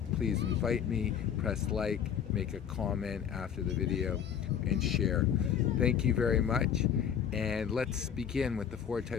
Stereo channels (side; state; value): right; quieter; 8.4 dB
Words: please invite me, press like, make a comment after the video, and share. Thank you very much. And let's begin with the 4